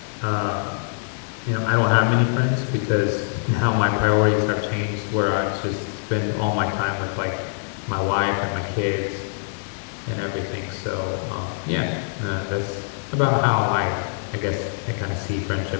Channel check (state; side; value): silent; right; digital silence